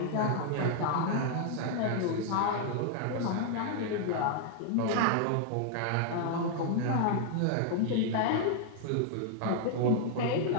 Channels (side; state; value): both; different; correlation 0.00